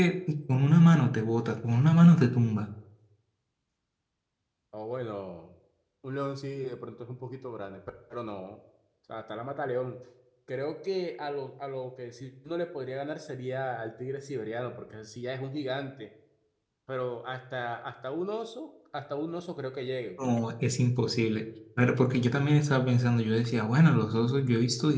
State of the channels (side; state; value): both; identical; correlation 1.00